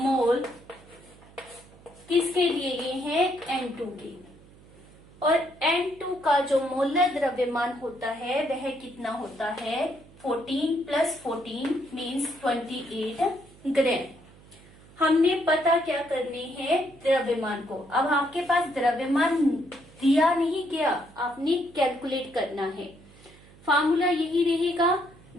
किसके दिए गए हैं, N2 के, और N2 का जो मोलर द्रव्यमान होता है वह कितना होता है, 14 + 14 मीन्स 28 ग्राम। हमने पता क्या करने हैं, द्रव्यमान को। अब आपके पास द्रव्यमान दिया नहीं गया, आपने कैलकुलेट करना है। फार्मूला यही रहेगा,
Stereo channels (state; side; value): noise; right; hum, 24 dB below the sound